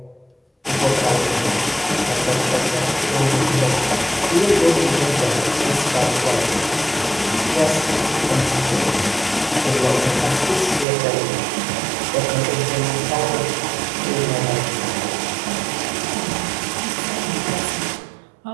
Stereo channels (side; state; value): left; drops out; at 10.9 s